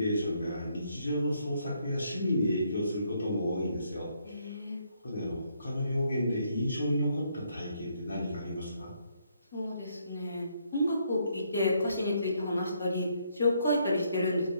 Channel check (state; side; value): inverted; both; correlation -0.72